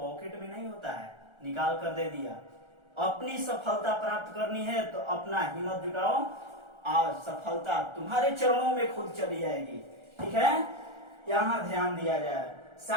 में नहीं होता है, निकाल कर दे दिया। अपनी सफलता प्राप्त करनी है तो अपना हिम्मत जुटाओ और सफलता तुम्हारे चरणों में खुद चली जाएगी, ठीक है। यहां ध्यान दिया जाए।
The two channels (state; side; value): late; left; 1.4 ms